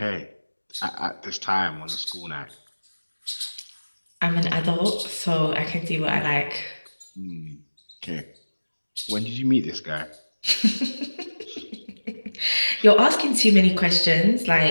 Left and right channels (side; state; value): both; inverted; correlation -1.00